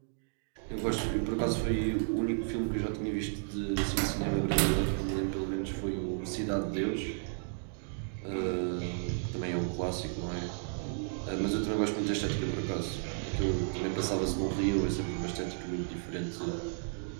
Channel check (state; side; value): silent; left; digital silence